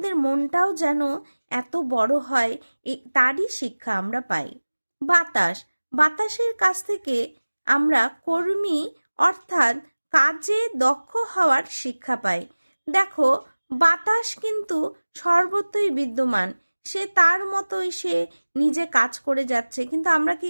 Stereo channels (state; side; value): inverted; both; correlation -1.00